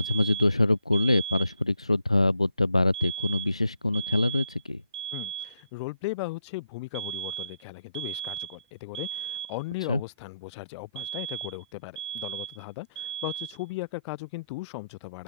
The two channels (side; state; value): both; inverted; correlation -0.79